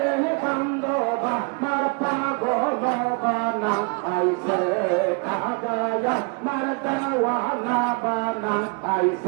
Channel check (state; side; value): quieter; left; 33.6 dB